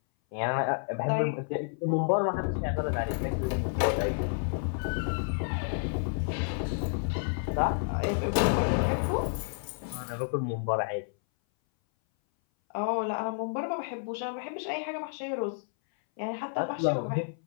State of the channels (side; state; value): right; silent; 58 dB below the other